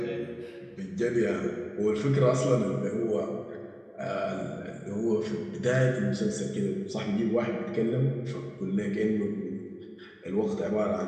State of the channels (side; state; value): both; identical; correlation 1.00